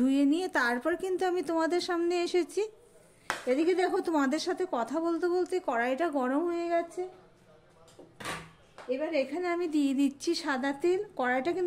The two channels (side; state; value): both; identical; correlation 1.00